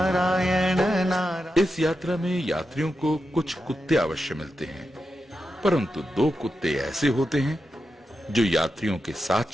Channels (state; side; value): normal; both; correlation 0.88